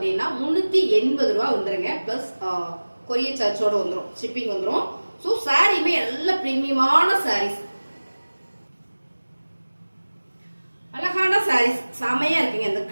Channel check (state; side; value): inverted; both; correlation -1.00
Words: 380 ரூபாய் வந்துருங்க. பிளஸ் கொரியர் சார்ஜோட வந்துடும். ஷிப்பிங் வந்துடும். ஸோ சாரியுமே நல்ல பிரீமியமான சாரீஸ். அழகான சாரீஸ் செமையா இருக்குங்க. இந்த